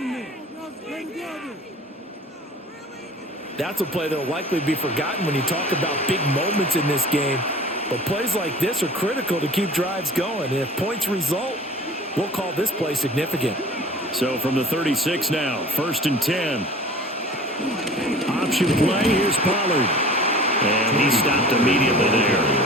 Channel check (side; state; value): both; normal; correlation 0.43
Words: That's a play that will likely be forgotten when you talk about big moments in this game. But plays like this are critical to keep drives going. And if points result, we'll call this play significant. So from the 36 now, 1st and 10. Option play, here's Pollard. And he stopped immediately there.